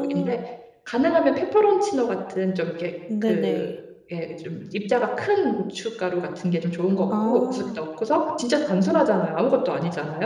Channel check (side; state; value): both; identical; correlation 1.00